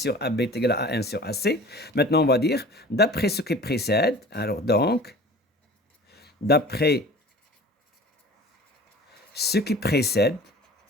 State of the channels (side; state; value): both; normal; correlation 0.42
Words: AB est égal à AN sur AC. Maintenant, on va dire, d'après ce qui précède, alors donc, d'après ce qui précède,